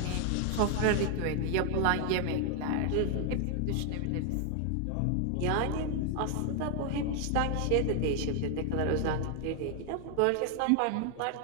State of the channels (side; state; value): both; different; correlation 0.00